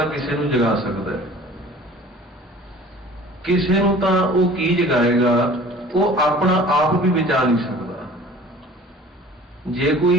ਕਿਸੇ ਨੂੰ ਜਗਾ ਸਕਦਾ, ਕਿਸੇ ਨੂੰ ਤਾਂ ਉਹ ਕੀ ਜਗਾਏਗਾ, ਉਹ ਆਪਣਾ ਆਪ ਵੀ ਬਚਾ ਨਹੀਂ ਸਕਦਾ। ਜੇ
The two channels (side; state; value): both; normal; correlation 0.46